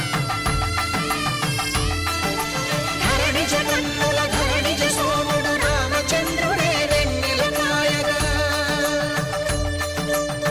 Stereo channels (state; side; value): identical; both; correlation 1.00